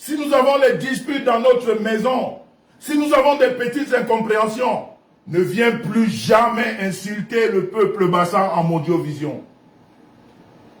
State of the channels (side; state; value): both; identical; correlation 1.00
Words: nous avons des disputes dans notre maison, si nous avons des petites incompréhensions, ne viens plus jamais insulter le peuple Bassa en Mondiovision.